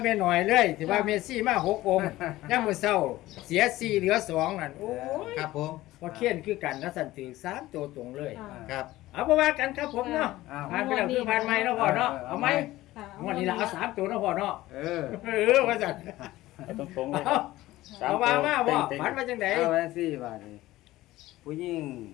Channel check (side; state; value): right; quieter; 16.8 dB